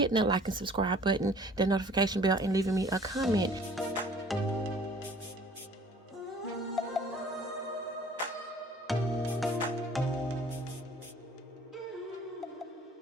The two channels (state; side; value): normal; both; correlation 0.52